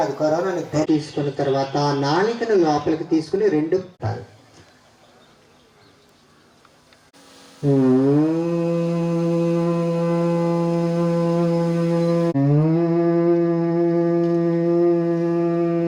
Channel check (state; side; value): identical; both; correlation 1.00